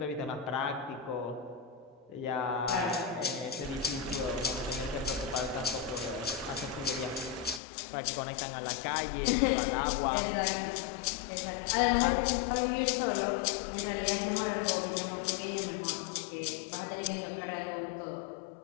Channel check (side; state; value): right; drops out; at 7.6 s